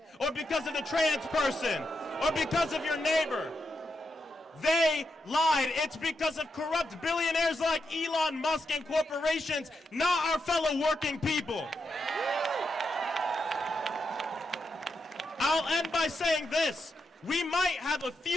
or because of the trans person, or because of your neighbor. They lied. It's because of corrupt billionaires like Elon Musk and corporations, not our fellow working people. I'll end by saying this. We might have a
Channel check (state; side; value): normal; both; correlation 0.84